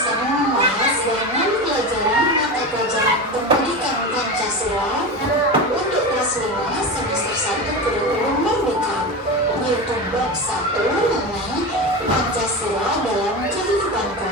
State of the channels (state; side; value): normal; both; correlation 0.23